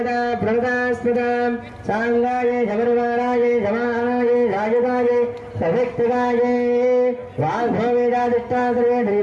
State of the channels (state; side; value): identical; both; correlation 1.00